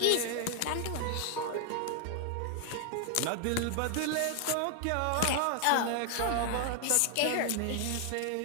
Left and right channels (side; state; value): both; different; correlation 0.00